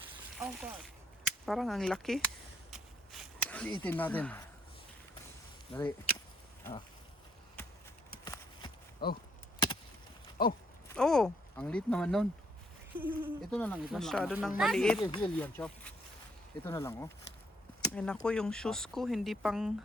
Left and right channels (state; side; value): normal; both; correlation 0.71